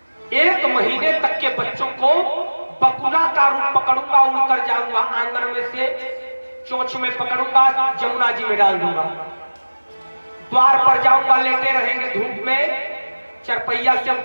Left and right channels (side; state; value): both; inverted; correlation -1.00